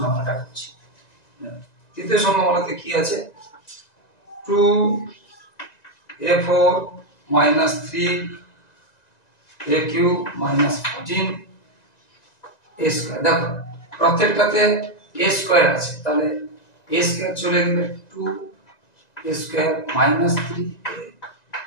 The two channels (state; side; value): late; right; 1.9 ms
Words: আমরা করছি। তৃতীয় সংখ্যা বলতে কি আছে, 2a4 minus 3a cube minus 14 a square. দেখো প্রত্যেকটাতে a স্কয়ার আছে, তাহলে a স্কয়ার চলে গেলে 2a square minus 3a